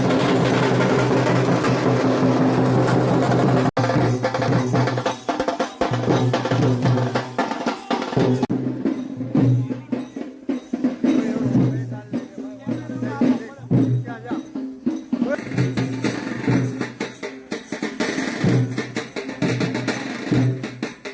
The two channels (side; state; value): both; identical; correlation 1.00